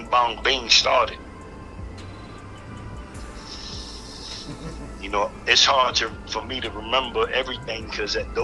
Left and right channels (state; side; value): identical; both; correlation 1.00